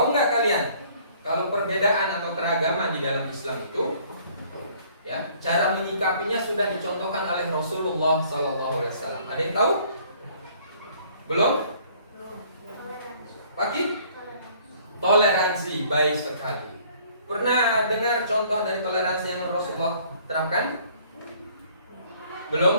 nggak kalian kalau perbedaan atau keragaman di dalam Islam itu, ya, cara menyikapinya sudah dicontohkan oleh Rasulullah SAW. Ada yang tahu? Belum? Pagi? Toleransi, baik sekali. Pernah dengar contoh dari toleransi yang Rasulullah terapkan?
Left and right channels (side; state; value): both; inverted; correlation -0.58